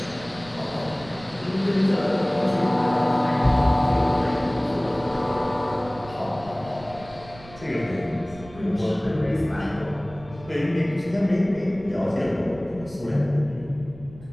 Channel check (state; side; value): noise; right; rumble, 20 dB below the sound